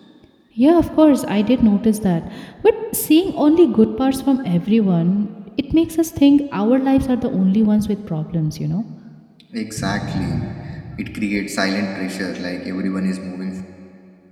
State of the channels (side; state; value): both; identical; correlation 1.00